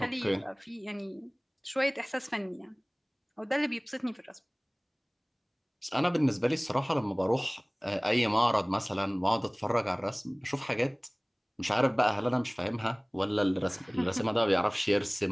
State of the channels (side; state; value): both; identical; correlation 1.00